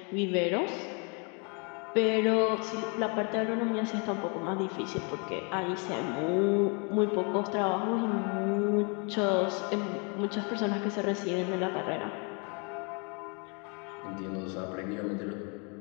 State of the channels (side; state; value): right; quieter; 34.9 dB